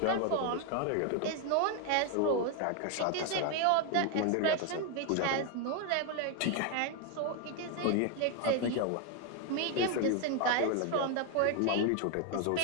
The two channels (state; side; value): different; both; correlation 0.01